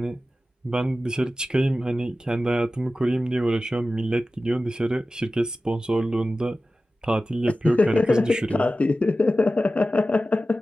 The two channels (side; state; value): both; normal; correlation 0.95